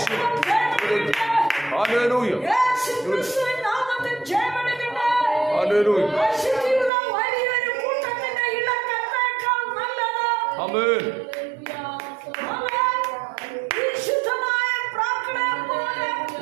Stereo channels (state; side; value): drops out; left; at 6.9 s